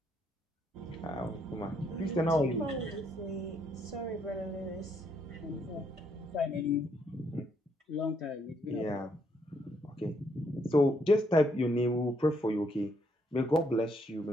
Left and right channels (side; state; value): both; normal; correlation 0.73